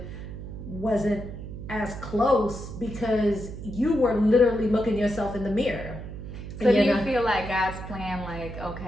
wasn't as close, because you were literally looking yourself in the mirror. So do you feel like God's plan, like,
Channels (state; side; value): noise; right; hum, 10 dB below the sound